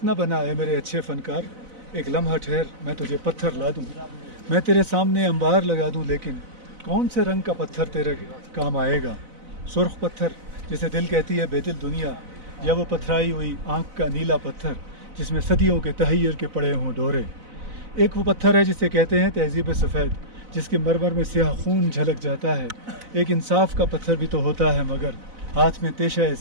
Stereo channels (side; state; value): left; late; 4.0 ms